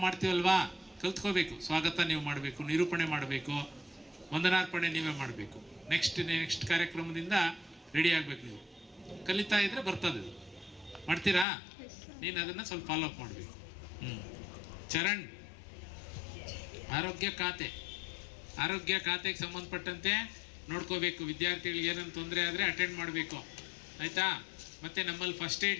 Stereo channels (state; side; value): drops out; right; at 11.5 s